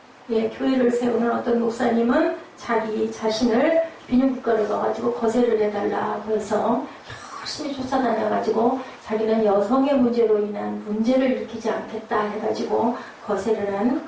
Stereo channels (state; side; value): identical; both; correlation 1.00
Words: 교회를 세우는 어떤 목사님은 자기 자신을 비뇨기과를 가가지고 거세를 해달라고 해서 열심히 쫓아다녀가지고 자기는 여성의 문제로 인한 문제를 일으키지 않겠다 해가지고 거세를 한